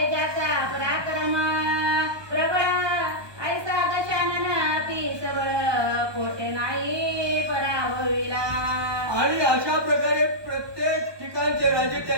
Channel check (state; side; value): late; left; 1.2 ms